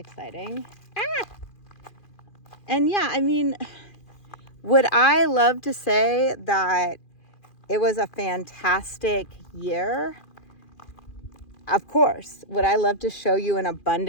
Ah! And yeah, I mean, would I love to say that it was a fantastic year? Of course. Would I love to show you an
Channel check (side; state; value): right; late; 2.4 ms